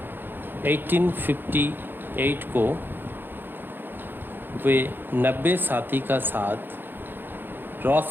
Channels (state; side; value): late; left; 0.097 ms